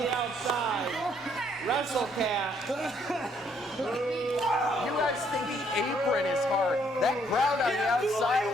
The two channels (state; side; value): normal; both; correlation 0.68